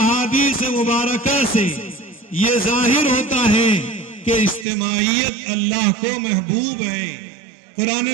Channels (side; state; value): left; drops out; at 4.7 s